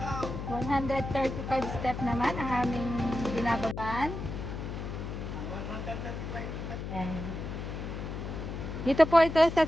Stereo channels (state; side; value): noise; left; hum, 6 dB below the sound